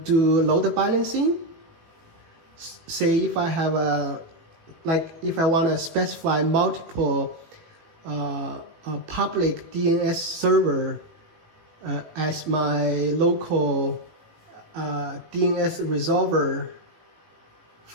do load balancing. Say if I have if I want to specify multiple public DNS server as my local DNS resolver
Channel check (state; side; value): late; left; 18 ms